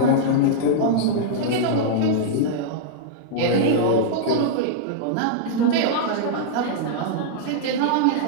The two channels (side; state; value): both; different; correlation -0.02